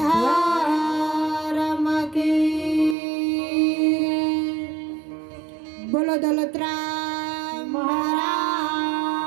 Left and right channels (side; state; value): left; drops out; at 3.0 s